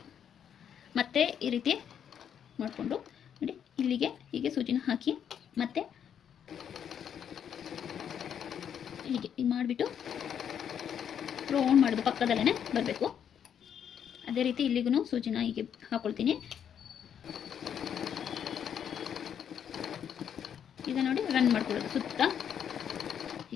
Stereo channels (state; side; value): quieter; right; 8.6 dB